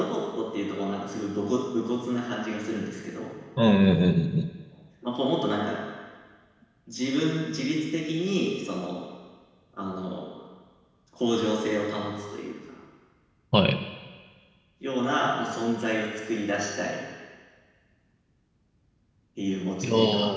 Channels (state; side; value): identical; both; correlation 1.00